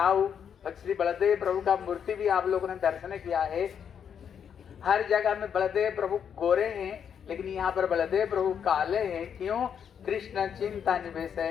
श्री बलदेव प्रभु का मूर्ति भी आप लोगों ने दर्शन किया है। हर जगह में बलदेव प्रभु गोरे हैं, लेकिन यहाँ पर बलदेव प्रभु काले हैं। क्यों? कृष्ण चिंता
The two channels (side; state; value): right; quieter; 7.9 dB